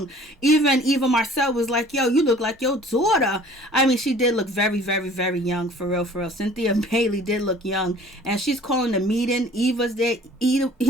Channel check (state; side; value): normal; both; correlation 0.50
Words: Even Marcel was like, yo, you look like your daughter. I mean, she did look very, very, very young, for real, for real. Cynthia Bailey did look young. And she's calling the meeting. Eva's there